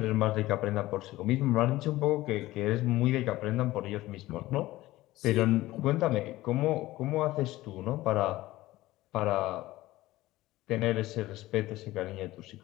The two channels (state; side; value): quieter; right; 17.2 dB